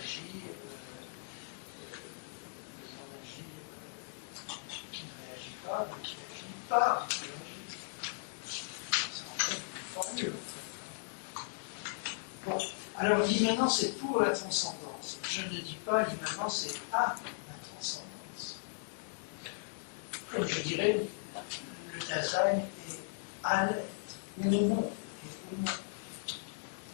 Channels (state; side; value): silent; right; digital silence